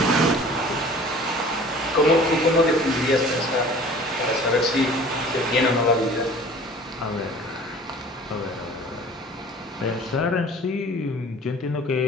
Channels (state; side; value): normal; both; correlation 0.46